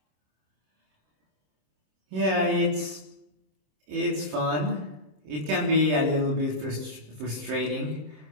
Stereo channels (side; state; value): left; late; 27 ms